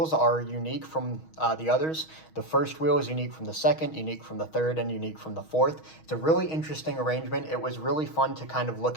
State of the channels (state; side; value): late; right; 6.3 ms